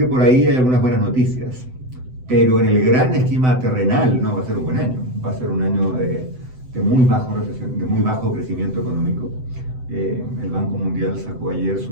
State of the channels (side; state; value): left; late; 7.9 ms